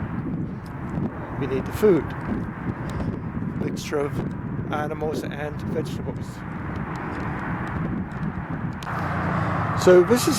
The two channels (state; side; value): identical; both; correlation 1.00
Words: We need the food, mixture of animals and vegetables. So this